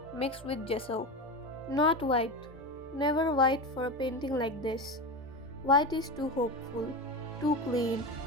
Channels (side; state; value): both; normal; correlation 0.21